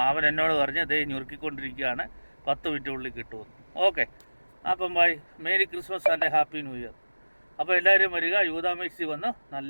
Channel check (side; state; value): both; inverted; correlation -1.00